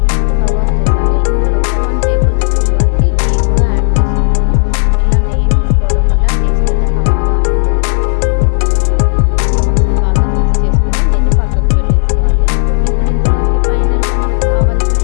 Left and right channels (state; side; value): silent; right; digital silence